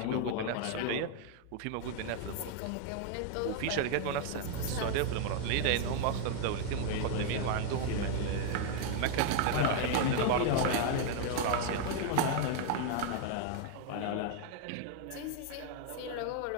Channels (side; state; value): both; different; correlation 0.00